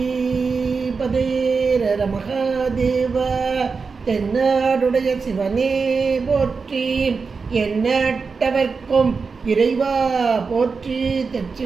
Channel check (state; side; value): quieter; left; 4.9 dB